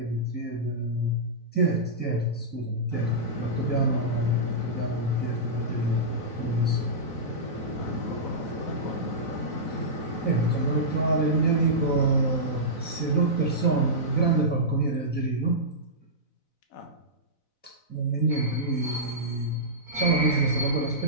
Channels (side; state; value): right; late; 4.0 ms